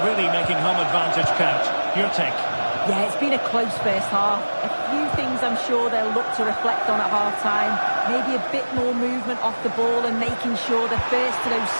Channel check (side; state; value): both; inverted; correlation -1.00